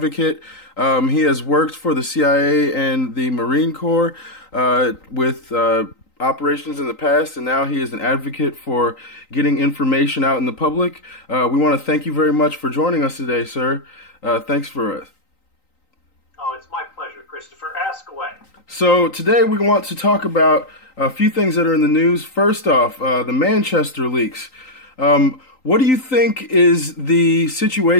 He has worked for the CIA and the Marine Corps with operations in the past, and now he is an advocate for getting information out in the public. We want to thank you very much for joining us today, sir. Thanks for Oh, it's my pleasure, Christopher. Ask away. So today we want to talk about a few things that are in the news. First off, the Manchester leaks. What do you think is the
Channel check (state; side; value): late; right; 3.9 ms